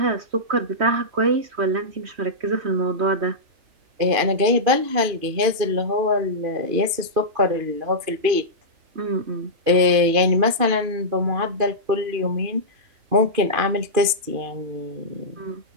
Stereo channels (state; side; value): late; left; 2.5 ms